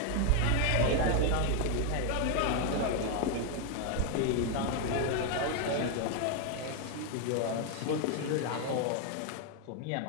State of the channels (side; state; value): both; different; correlation 0.01